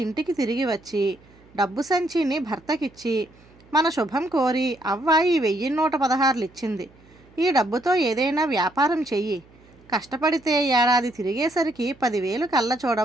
ఇంటికి తిరిగి వచ్చి డబ్బు సంచిని భర్తకిచ్చి మన శుభం కోరి అవ్వ ఈ 1116 ఇచ్చింది. ఈ డబ్బుతో ఏదైనా వ్యాపారం చెయ్యి. కష్టపడితే ఏడాది తిరిగేసరికి 10,000 కళ్ళ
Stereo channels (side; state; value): right; noise; hum, 27 dB below the sound